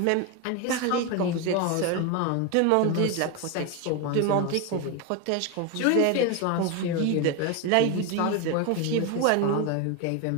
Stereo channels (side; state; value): both; different; correlation 0.02